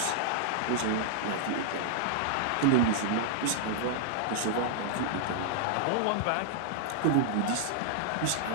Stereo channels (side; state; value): both; different; correlation -0.01